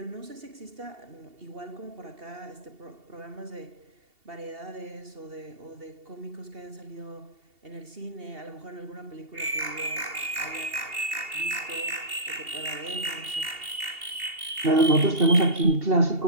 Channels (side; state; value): left; late; 2.7 ms